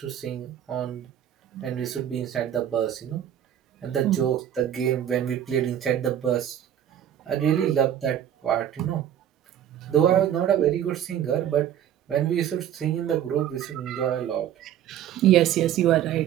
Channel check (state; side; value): quieter; left; 10.5 dB